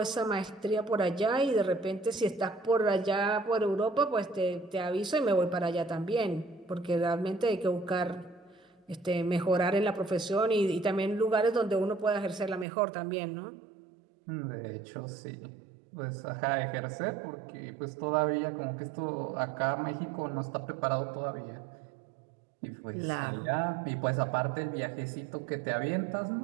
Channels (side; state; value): left; drops out; at 12.7 s